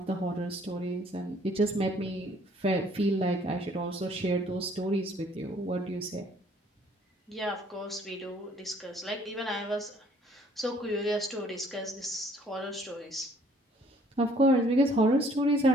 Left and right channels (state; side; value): normal; both; correlation 0.60